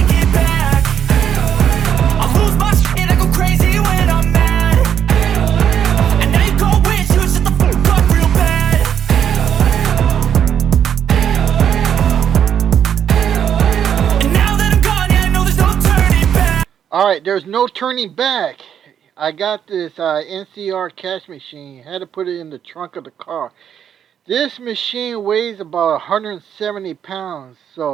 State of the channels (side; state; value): left; quieter; 8.8 dB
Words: it back. I'll lose my shit, I go crazy when I'm mad. And now you go wish you would shut the fuck up real bad. And now that I'm gone, yeah, I know there's no turning back. Alright, there's no turning back. I got this NCR cash machine. Had to put it in the trunk of the car. This machine weighs about 170 pounds.